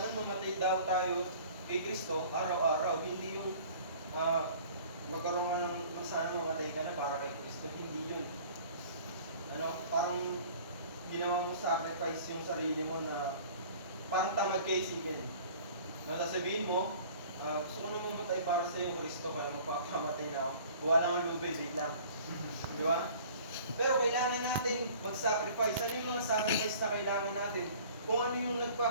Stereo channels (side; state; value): both; inverted; correlation -0.48